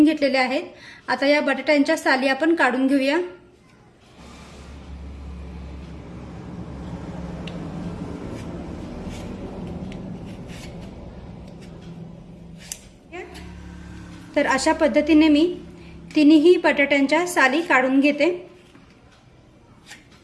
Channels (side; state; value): both; identical; correlation 1.00